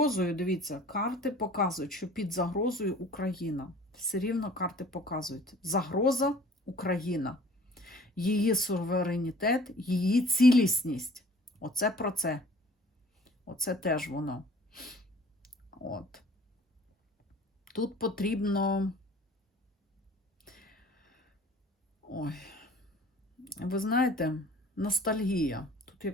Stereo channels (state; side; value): normal; both; correlation 0.50